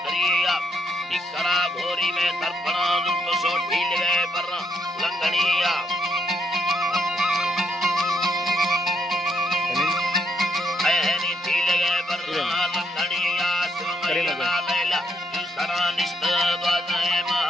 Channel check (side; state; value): both; normal; correlation 0.74